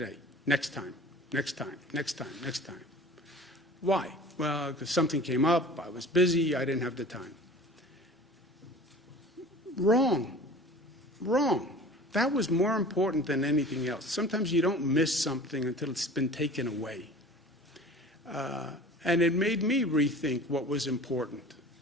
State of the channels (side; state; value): both; normal; correlation 0.42